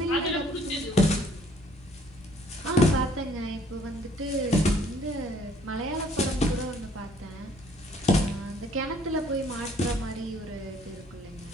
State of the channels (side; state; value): both; normal; correlation 0.60